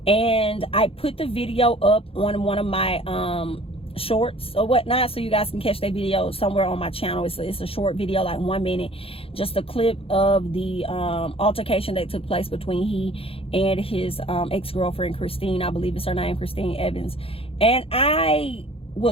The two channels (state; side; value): late; right; 0.27 ms